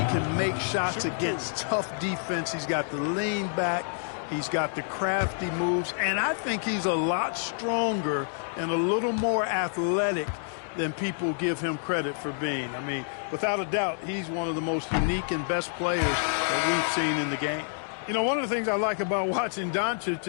make shots against tough defense. He's got the lean back. He's got the crafty moves. And I think he's a lot stronger and a little more athletic than people give him credit for being. I mean, without a doubt, he's one of the most unique and best players that we've seen in the game. You know, one of the things I like about watching Doncic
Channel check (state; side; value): silent; right; digital silence